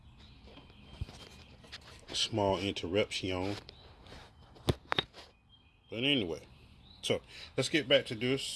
small interruption. But anyway, so let's get back to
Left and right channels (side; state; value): both; identical; correlation 1.00